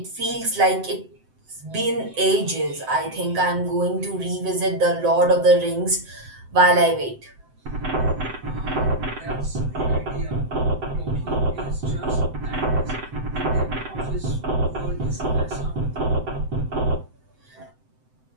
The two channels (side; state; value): left; late; 7.8 ms